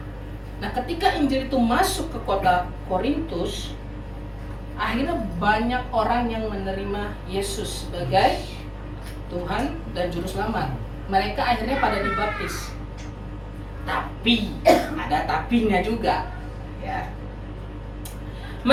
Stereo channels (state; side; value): identical; both; correlation 1.00